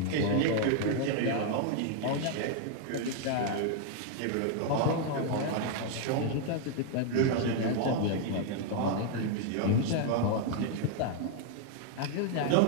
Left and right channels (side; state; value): both; different; correlation 0.00